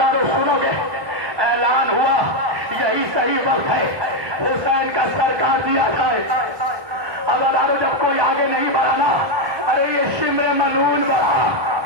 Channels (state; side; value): late; left; 1.2 ms